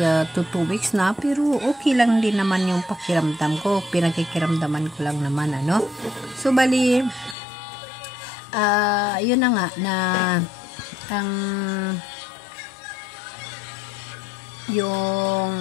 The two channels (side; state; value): right; drops out; at 7.4 s